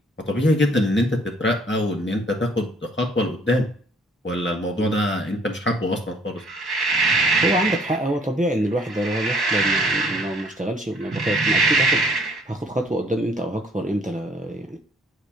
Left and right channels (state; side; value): normal; both; correlation 0.61